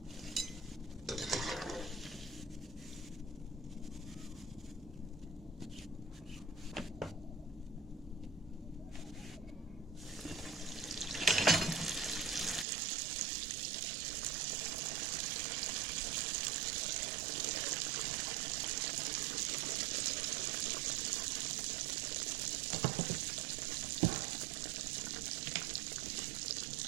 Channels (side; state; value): left; drops out; at 12.7 s